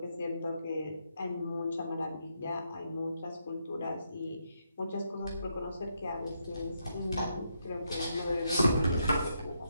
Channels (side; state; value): both; inverted; correlation -0.79